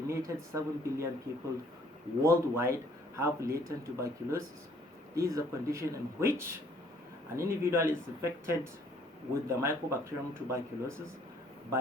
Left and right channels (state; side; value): normal; both; correlation 0.61